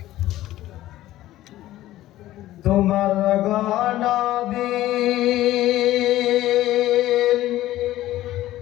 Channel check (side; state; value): right; quieter; 14.9 dB